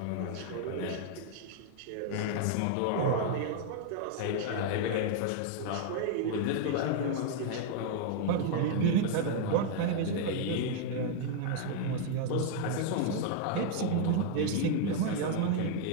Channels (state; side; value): different; both; correlation 0.00